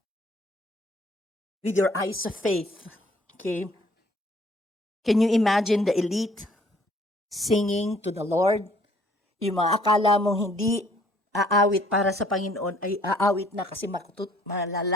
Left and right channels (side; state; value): both; normal; correlation 0.60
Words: with your eyes of faith, okay, can you imagine the elite singing to the Lord? Yung mga akala mong hindi aawit para sa Panginoon ay aawit na kasi